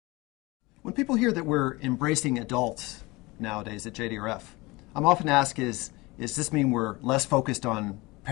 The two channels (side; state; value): right; quieter; 22.9 dB